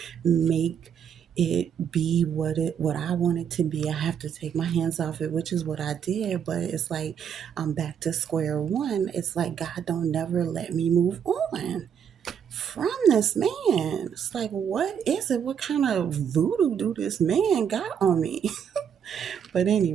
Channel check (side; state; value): left; quieter; 8.0 dB